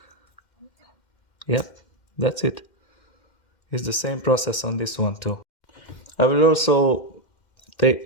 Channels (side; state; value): right; late; 2.1 ms